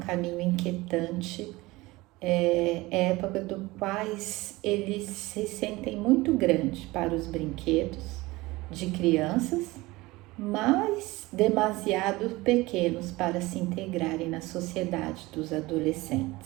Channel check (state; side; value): quieter; left; 20.8 dB